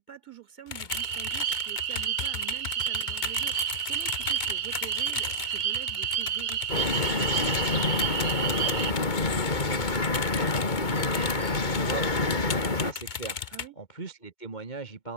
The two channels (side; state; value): right; late; 2.2 ms